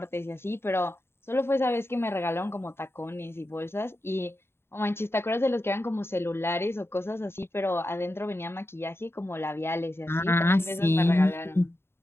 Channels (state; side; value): late; right; 0.12 ms